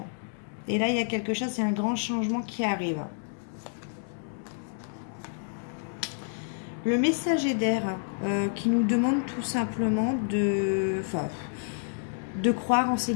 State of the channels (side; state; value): right; silent; digital silence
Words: Et là, il y a quelque chose, c'est un grand changement qui arrive. Le messager d'air qui nous demande tout simplement de croire en ses